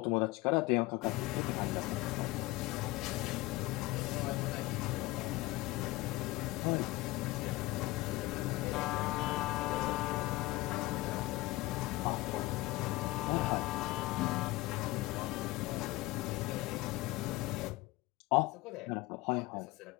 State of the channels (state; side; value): quieter; right; 19.6 dB